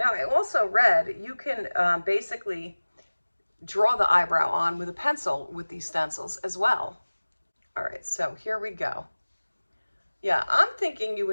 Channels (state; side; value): inverted; both; correlation -1.00